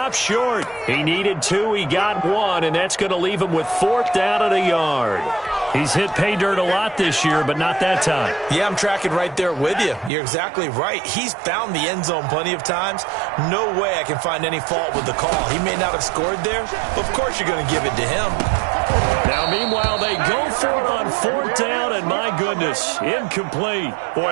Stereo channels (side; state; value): left; drops out; at 10.1 s